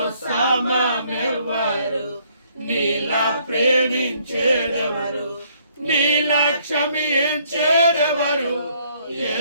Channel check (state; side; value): inverted; both; correlation -0.66